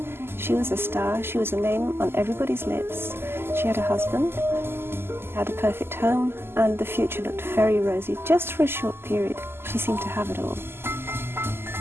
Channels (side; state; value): left; late; 0.12 ms